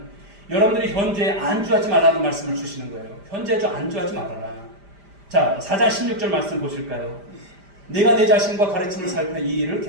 여러분들이 현재에 안주하지 말라는 말씀을 주시는 거예요. 현재에 안주하지 말아라. 자, 4장 16절 말씀 보실까요? 내가 내 자신과 가르침을 살펴 이 일을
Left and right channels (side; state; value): left; late; 5.0 ms